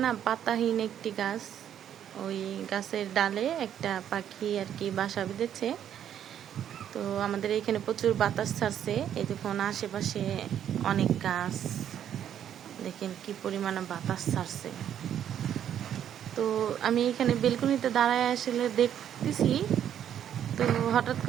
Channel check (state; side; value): quieter; left; 9.9 dB